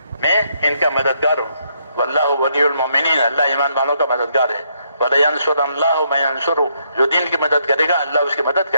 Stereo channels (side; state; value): both; inverted; correlation -0.74